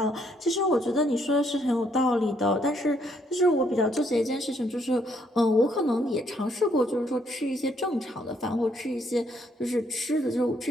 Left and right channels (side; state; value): both; normal; correlation 0.70